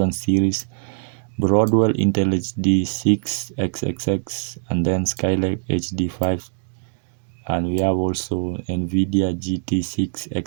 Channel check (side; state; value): left; silent; digital silence